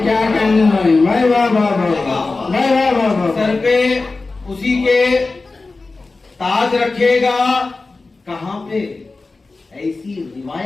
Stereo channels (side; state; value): right; quieter; 3.6 dB